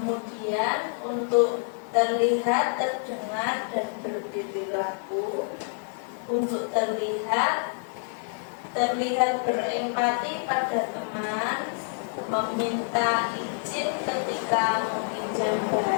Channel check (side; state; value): right; silent; 55 dB below the other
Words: untuk terlihat, terdengar, dan berperilaku. Untuk terlihat berempati pada teman, meminta izin ketika meminjam